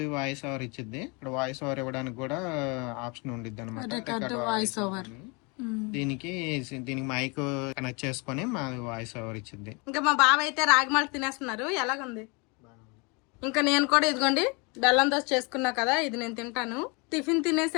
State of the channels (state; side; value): quieter; right; 30.2 dB